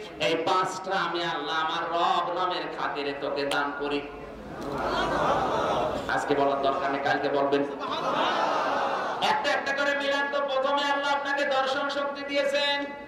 এই 5টা আমি আল্লাহ আমার রব নামের খাতিরে তোকে দান করি। আজকে বলার দরকার নেই, কালকে বলবেন। একটা একটা করে মিলান তো। প্রথমে আল্লাহ আপনাকে দর্শন শক্তি দিয়েছেন।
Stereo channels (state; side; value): identical; both; correlation 1.00